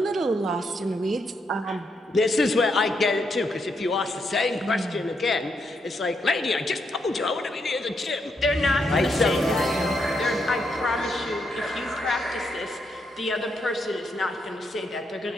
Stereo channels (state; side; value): normal; both; correlation 0.79